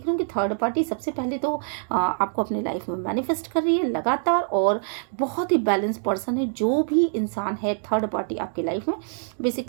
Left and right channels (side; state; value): left; silent; digital silence